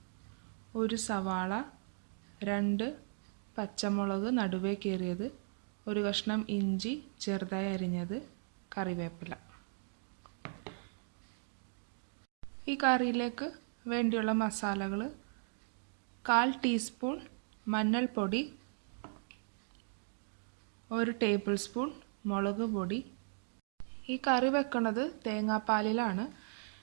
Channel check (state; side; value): silent; left; digital silence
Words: 1 സവാള, 2 പച്ചമുളക് നടുവേ കീറിയത്, 1 കഷ്ണം ഇഞ്ചി ചെറുതായി അരിഞ്ഞത്, കറിവേപ്പില. ഈ കറിയിലേക്ക് വേണ്ടിയുള്ള മസാലകൾ: 1/4 ടീസ്പൂൺ മഞ്ഞൾപ്പൊടി, 1 ടേബിൾ സ്പൂൺ മുളക് പൊടി. ഈ കറി വെക്കുന്നത് തേങ്ങാപ്പാലിലാണ്.